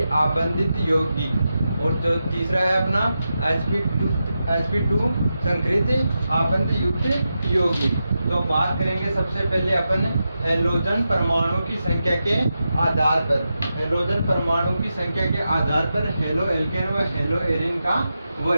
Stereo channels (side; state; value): both; inverted; correlation -0.89